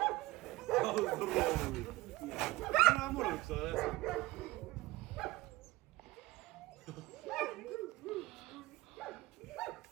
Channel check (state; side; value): quieter; left; 19.4 dB